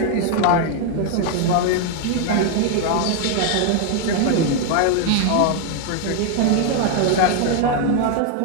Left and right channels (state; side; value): different; both; correlation 0.00